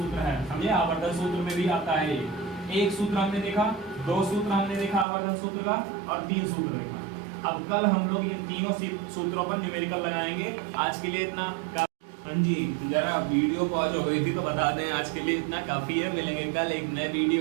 है, समझे। आवर्धन सूत्र में भी आता है ये। एक सूत्र हमने देखा, दो सूत्र हमने देखा आवर्धन सूत्र का, और 3 सूत्र देखा। अब कल हम लोग ये तीनों सूत्रों पर न्यूमेरिकल लगाएंगे। आज के लिए इतना हाँ जी, जरा वीडियो पॉज हो गई थी तो बता दें, आज के लिए इतना काफी है। मिलेंगे कल एक नए वीडियो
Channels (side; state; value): left; drops out; at 5.1 s